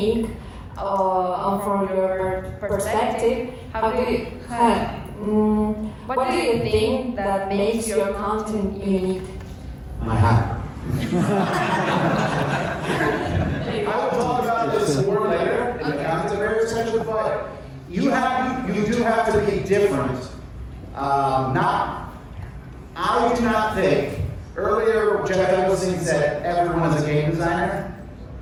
from your perspective, what do you think that makes your content unique? My hat. I will talk about this more later in the content creator section, but you do have to be different. I do not think, earlier Jeff Eggleston said everyone is a game designer.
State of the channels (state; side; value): identical; both; correlation 1.00